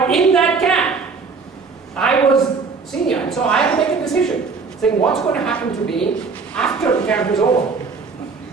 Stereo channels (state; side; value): quieter; left; 4.8 dB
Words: in that camp, I was senior, and so I had to make a decision, saying what's going to happen to me after the camp is over.